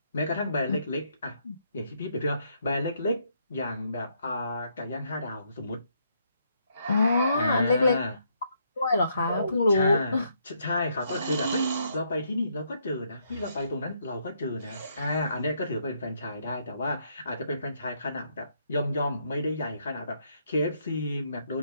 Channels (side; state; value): both; inverted; correlation -0.73